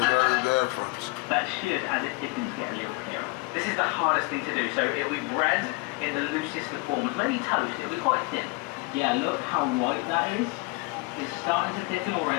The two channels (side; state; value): right; quieter; 26.0 dB